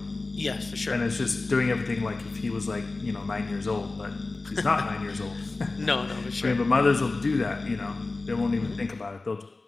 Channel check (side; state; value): right; quieter; 3.4 dB